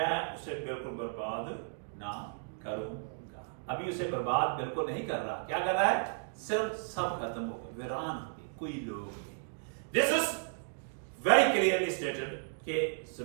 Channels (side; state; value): left; silent; digital silence